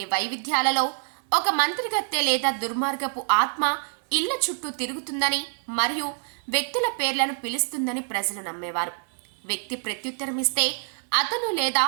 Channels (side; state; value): left; silent; digital silence